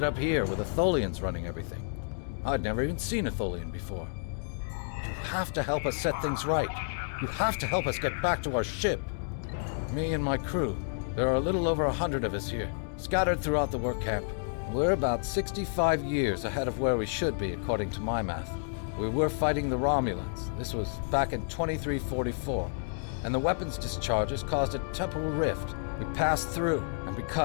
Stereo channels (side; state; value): right; silent; digital silence